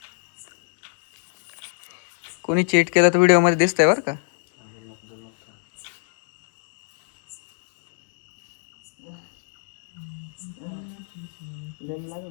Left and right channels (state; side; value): silent; right; digital silence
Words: कोणी चीट केलं तर व्हिडिओ मध्ये दिसतंय बरं का.